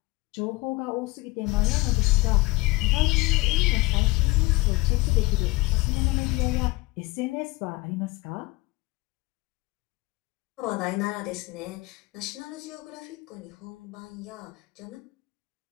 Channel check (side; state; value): right; quieter; 21.9 dB